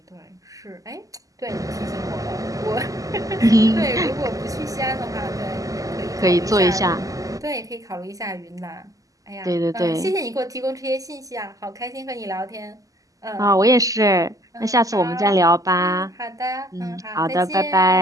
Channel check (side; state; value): left; late; 0.17 ms